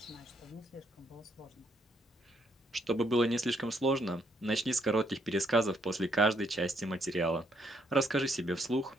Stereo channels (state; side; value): normal; both; correlation 0.72